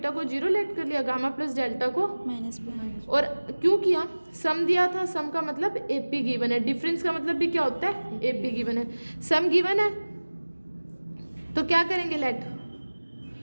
को 0 लेट कर लिया, गामा प्लस डेल्टा को माइनस। और क्यों किया, सम दिया था, सम का मतलब एपी गिवन है, डिफरेंस का मतलब भी क्या होता है, एपी गिवन है। सम गिवन है तो क्या करेंगे, लेट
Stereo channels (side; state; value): both; inverted; correlation -1.00